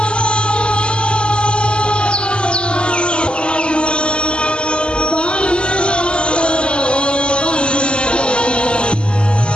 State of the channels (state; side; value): late; right; 0.051 ms